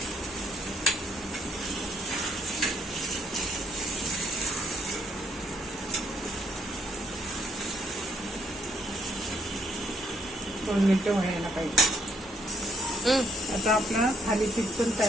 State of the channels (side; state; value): both; normal; correlation 0.71